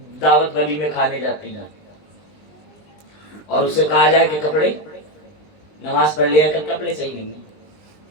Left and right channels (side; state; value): right; late; 19 ms